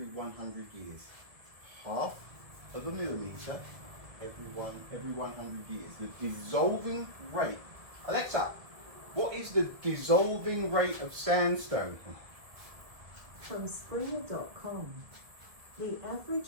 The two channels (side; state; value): left; late; 1.7 ms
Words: 100 years. 1/2 of a millimeter every 100 years. The dissolving rate. Alexa, what is the dissolving rate of sandstone? From Springer.com, The